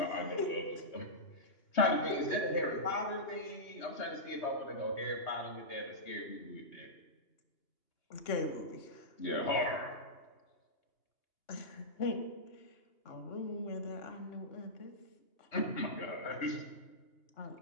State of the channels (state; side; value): late; right; 2.8 ms